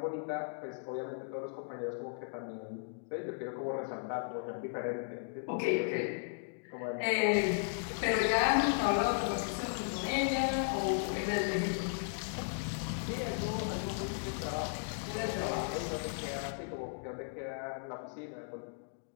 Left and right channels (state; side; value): silent; right; digital silence